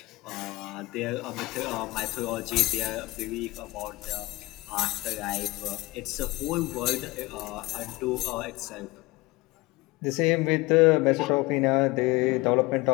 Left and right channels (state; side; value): quieter; right; 20.9 dB